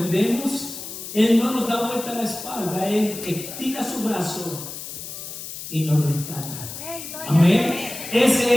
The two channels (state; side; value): noise; left; hiss, 10 dB below the sound